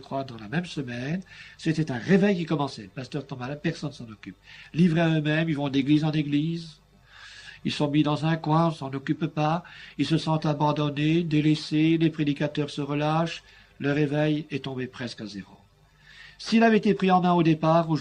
dans la même semaine. C'était un réveil qui commençait. Le pasteur tombe malade, personne ne s'en occupe. Livrés à eux-mêmes, ils vont d'église en église. Ils sont mis dans un coin, on ne s'en occupe pas. Ils se sentent abandonnés, délaissés, les prédicateurs se relâchent. Le réveil est tombé presque à zéro. S'il avait été pris en main au départ,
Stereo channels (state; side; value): identical; both; correlation 1.00